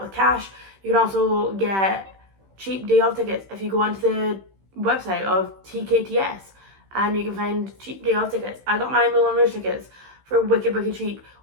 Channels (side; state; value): left; late; 15 ms